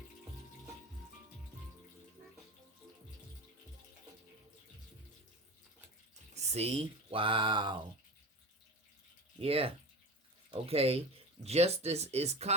See? Wow. Yeah. Okay. Justice is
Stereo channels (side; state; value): both; normal; correlation 0.30